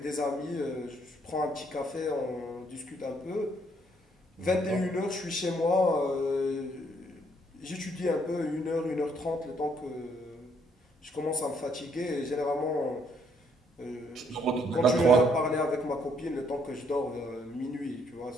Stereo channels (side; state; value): both; normal; correlation 0.69